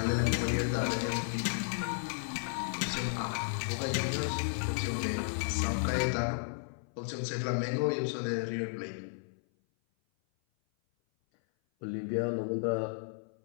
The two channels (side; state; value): right; silent; 55 dB below the other